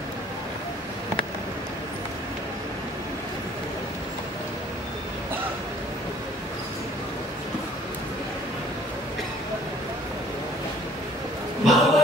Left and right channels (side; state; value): both; normal; correlation 0.56